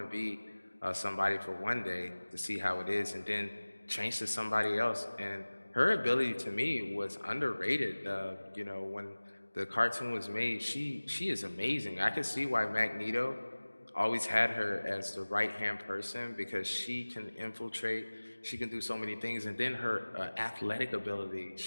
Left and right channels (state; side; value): inverted; both; correlation -1.00